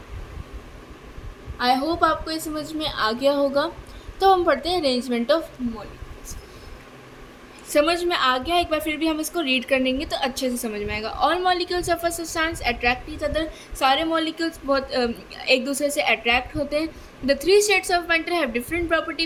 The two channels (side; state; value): both; identical; correlation 1.00